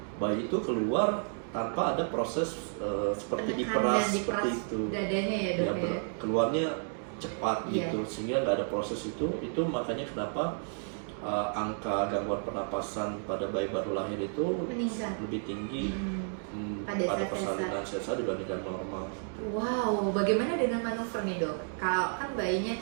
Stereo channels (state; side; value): silent; left; 57 dB below the other